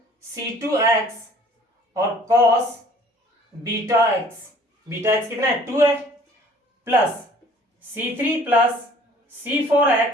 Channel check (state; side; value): normal; both; correlation 0.54